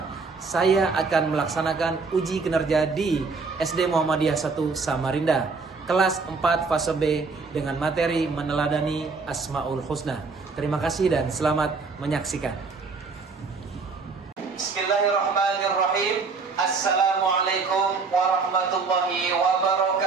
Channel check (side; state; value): left; quieter; 4.5 dB